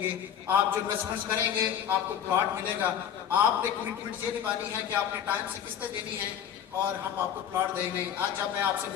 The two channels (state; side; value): quieter; right; 9.2 dB